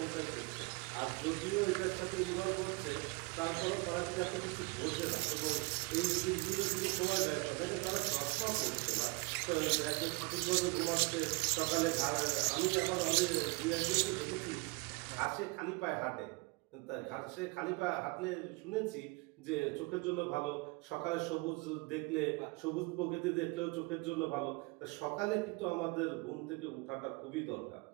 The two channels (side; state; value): left; quieter; 26.9 dB